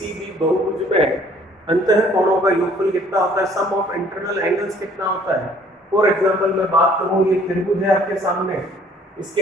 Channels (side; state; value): both; normal; correlation 0.58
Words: भी बहुभुज में अंतःकोणों का योगफल कितना होता है, सम ऑफ इंटरनल एंगल्स कितना होता है। फॉर एग्जांपल मैं बात करूं, ये त्रिभुज है आपके सामने, इसके